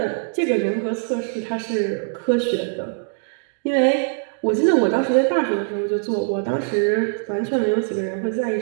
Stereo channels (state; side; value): silent; left; 61 dB below the other